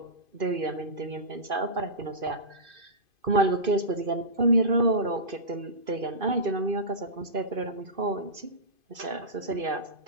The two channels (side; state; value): left; late; 2.5 ms